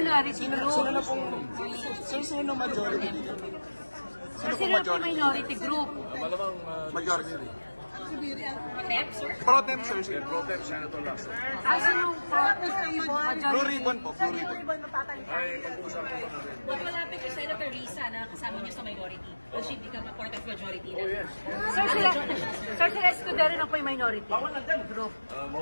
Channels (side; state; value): both; inverted; correlation -1.00